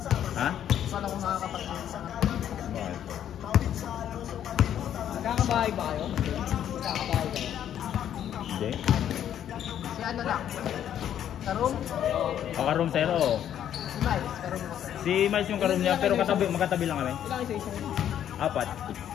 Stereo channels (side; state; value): right; quieter; 10.2 dB